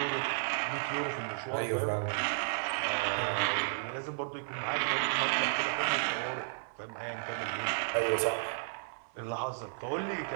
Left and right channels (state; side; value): silent; left; 56 dB below the other